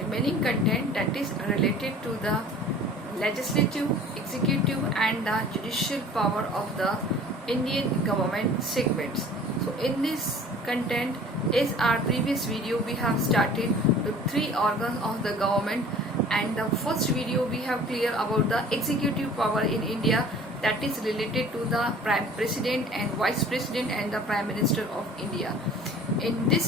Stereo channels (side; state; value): both; normal; correlation 0.47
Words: content that is related to the legislative, executive and the judicial power of the Indian government segments. So in this content, as our previous video, we have started the three organs of the government, and the first video we have clear about the executive power in India, that is related to the Prime President and Vice President and the Prime Minister of India. In